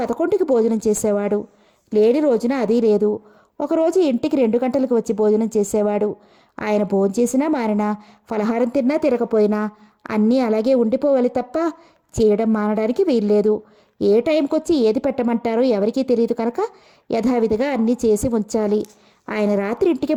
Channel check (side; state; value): both; identical; correlation 1.00